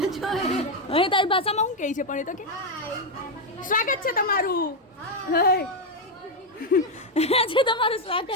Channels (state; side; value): normal; both; correlation 0.04